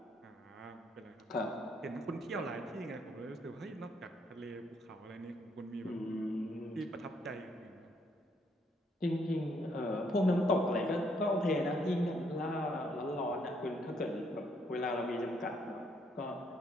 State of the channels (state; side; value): normal; both; correlation 0.71